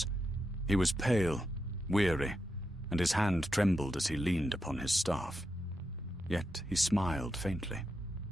He was pale, weary, and his hand trembled as he leaned upon his staff. Yet he smiled faintly.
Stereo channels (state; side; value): normal; both; correlation 0.86